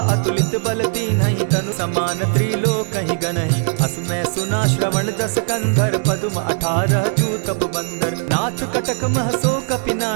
अतुलित बल दीन्हि, तनु समान त्रिलोक ही गनहि। अस मैं सुना श्रवण दस कंधर, पदुम 18 जूतब बंदर। नाथ कटक महसो कपि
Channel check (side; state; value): left; silent; 60 dB below the other